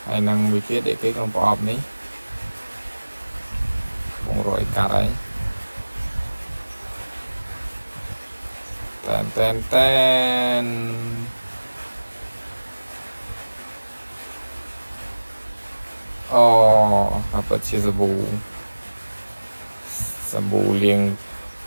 ហើយនឹងមួយទៀតឯគេក្នុងប្រអប់នេះបងរយកាត់ហើយតែនអូអាពិតជាសាប៊ូលាង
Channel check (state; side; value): inverted; both; correlation -1.00